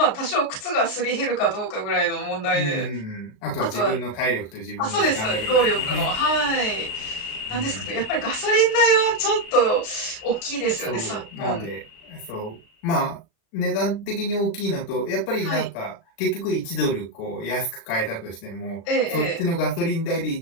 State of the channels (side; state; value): right; late; 37 ms